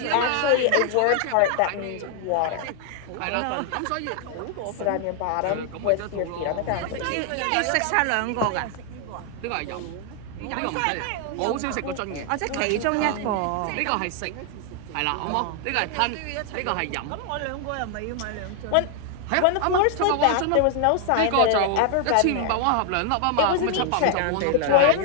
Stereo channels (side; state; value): both; different; correlation 0.00